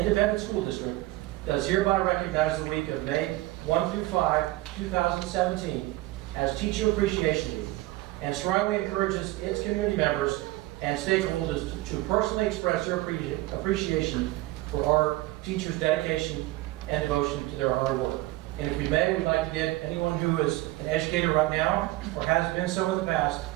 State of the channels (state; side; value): quieter; left; 18.5 dB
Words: School District does hereby recognize the week of May 1 through 5, 2017 as Teacher Appreciation Week, and strongly encourages its community members and stakeholders to personally express their appreciation for our teachers' dedication and devotion to their hard work. And if we may, we'd like to get anyone who is an educator right now or has been so in the past